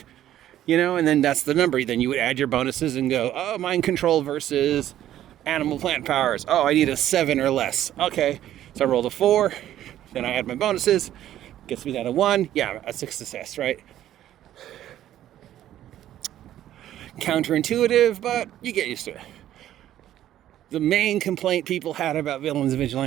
and then that's the number. Then you would add your bonuses and go, mind control versus animal plant powers. I need a 7 or less. Okay, so I rolled a 4, then I add my bonuses, gets me down to 1. Yeah, that's a success, right? Counterintuitive, but you get used to it. The main complaint people had about Villains and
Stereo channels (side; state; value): left; quieter; 12.3 dB